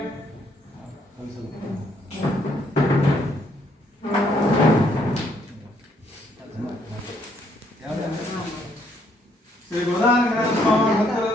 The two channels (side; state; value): both; normal; correlation 0.70